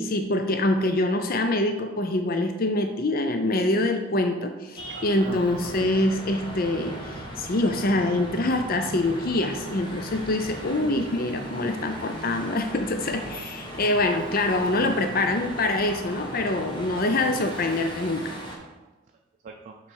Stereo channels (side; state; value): both; normal; correlation 0.38